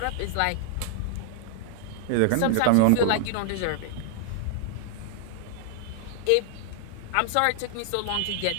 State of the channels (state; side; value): different; both; correlation -0.01